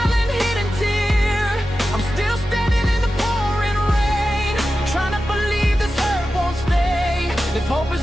hidden tear. I'm still standing in the pouring rain, trying to believe this hurt won't stay. If hope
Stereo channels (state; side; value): normal; both; correlation 0.92